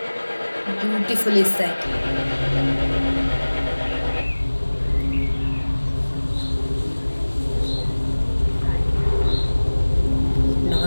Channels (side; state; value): both; inverted; correlation -1.00